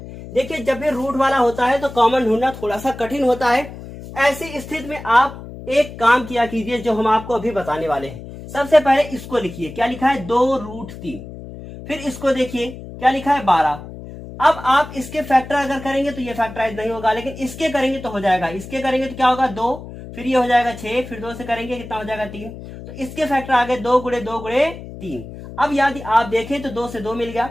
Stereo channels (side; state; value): left; noise; hum, 13 dB below the sound